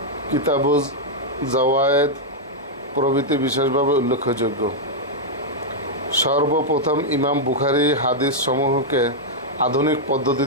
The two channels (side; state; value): both; normal; correlation -0.04